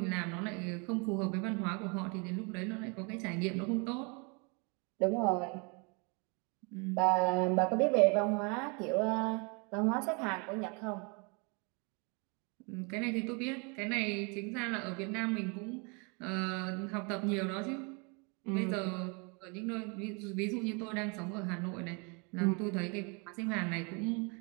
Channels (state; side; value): quieter; left; 32.7 dB